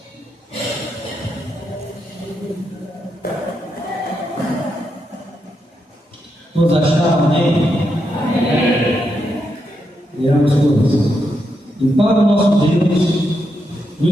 Todos acharam, amém? Leamos todos. E para o nosso Deus,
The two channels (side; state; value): both; normal; correlation 0.83